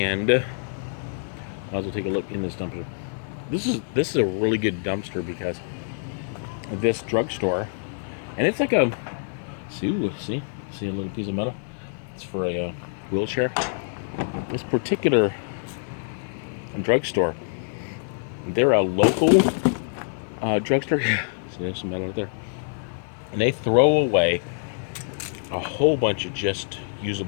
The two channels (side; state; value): right; silent; 59 dB below the other